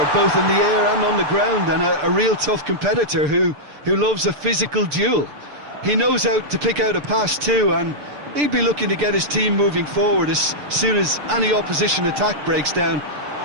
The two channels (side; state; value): left; late; 6.8 ms